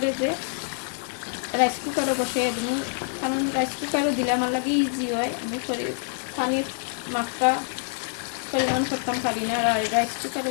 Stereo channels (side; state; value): right; silent; 61 dB below the other